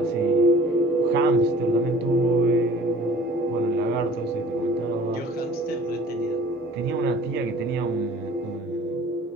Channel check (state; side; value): normal; both; correlation 0.49